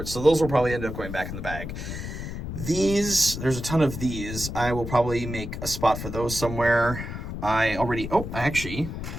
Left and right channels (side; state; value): left; noise; rumble, 7 dB below the sound